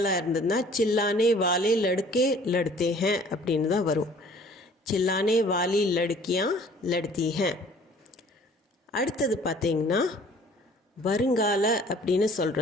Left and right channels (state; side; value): normal; both; correlation 0.53